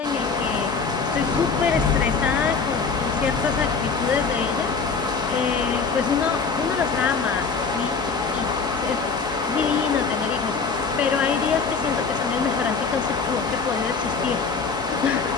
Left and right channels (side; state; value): right; quieter; 5.1 dB